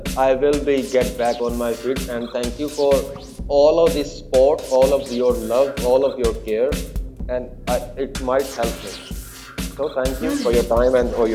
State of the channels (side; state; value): both; identical; correlation 1.00